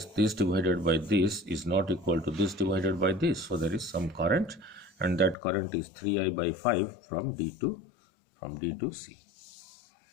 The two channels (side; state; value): right; drops out; at 5.4 s